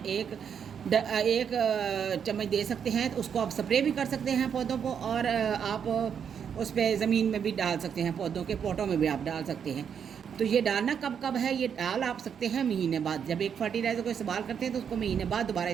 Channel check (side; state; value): left; quieter; 7.6 dB